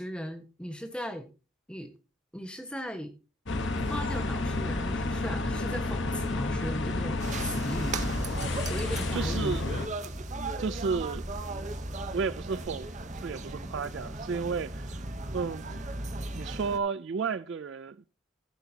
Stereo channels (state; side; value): normal; both; correlation 0.52